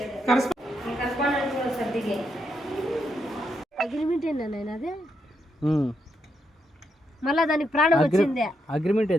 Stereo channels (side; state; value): both; normal; correlation 0.81